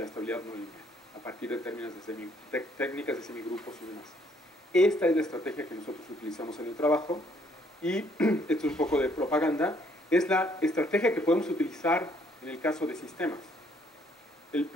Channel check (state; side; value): normal; both; correlation 0.66